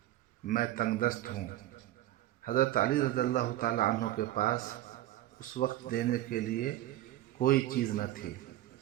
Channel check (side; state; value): left; quieter; 14.5 dB